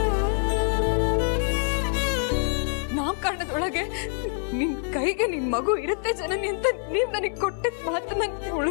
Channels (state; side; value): silent; right; 61 dB below the other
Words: ನಾಮಕರಣದೊಳಗೆ ನಿನ್ ಕೈಗೆ ನಿನ್ ಮಗು ಇರುತ್ತೆ ಜನನಿ ಅಂತ ನೀವ್ ನನಗೆ ಕೊಟ್ಟಿದ್ ಮಾತನ್ನ